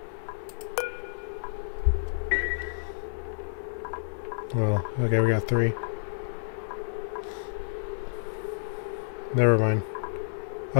Well, okay, we got three. Never mind. I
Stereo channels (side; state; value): right; silent; 58 dB below the other